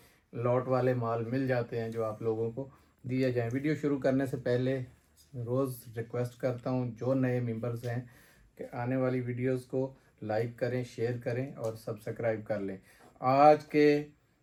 लॉट वाले माल मिल जाते हैं जो आप लोगों को दिए जाएं। वीडियो शुरू करने से पहले रोज़ रिक्वेस्ट करता हूं जो नए मेंबर्स हैं कि आने वाली वीडियोस को लाइक करें, शेयर करें और सब्सक्राइब कर लें। आज के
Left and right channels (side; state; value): both; identical; correlation 1.00